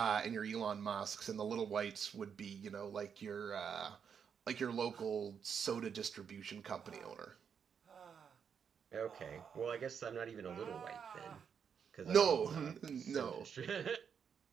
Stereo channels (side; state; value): left; quieter; 7.1 dB